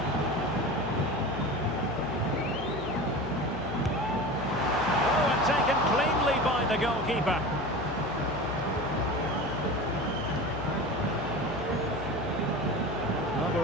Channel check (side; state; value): left; noise; hum, 11 dB below the sound